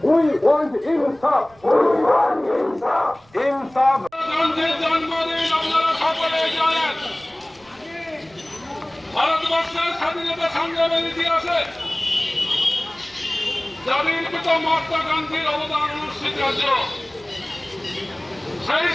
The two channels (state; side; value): noise; right; rumble, 29 dB below the sound